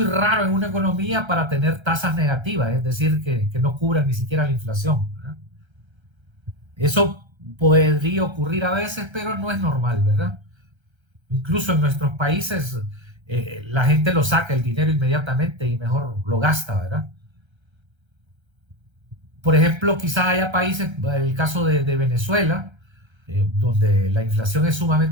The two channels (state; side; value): late; left; 1.3 ms